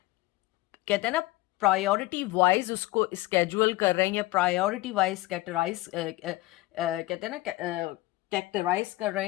कहते हैं ना, प्रायोरिटी वाइज उसको स्केड्यूल कर रहे हैं, या प्रायोरिटी वाइज कैटेगराइज, कहते हैं ना, कैटेगराइज कर रहे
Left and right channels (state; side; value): quieter; right; 18.6 dB